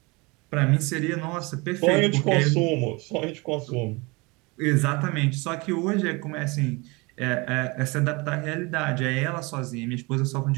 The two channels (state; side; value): quieter; left; 26.3 dB